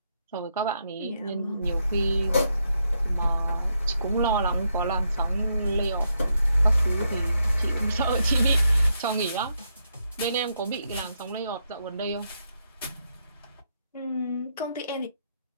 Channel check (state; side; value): inverted; both; correlation -0.80